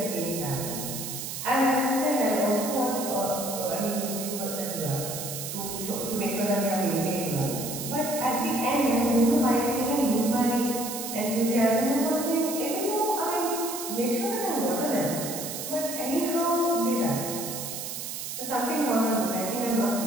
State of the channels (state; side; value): noise; right; hiss, 6 dB below the sound